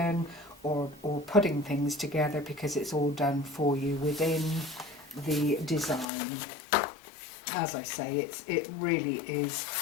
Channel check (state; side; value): drops out; right; at 6.1 s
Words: or putting things together, because it's all done for you within the design. As I say, it really is